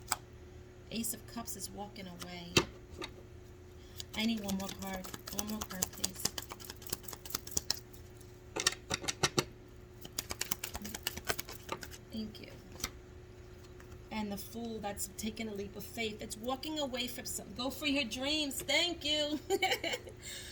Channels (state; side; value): identical; both; correlation 1.00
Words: Ace of Cups is walking away. I need one more card. One more card, please. Thank you. And the Fool, that's taking a leap of faith. It's walking away from something. Go for your dreams. Thank you.